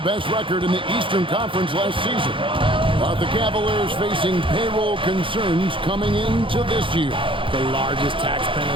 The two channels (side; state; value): left; late; 0.25 ms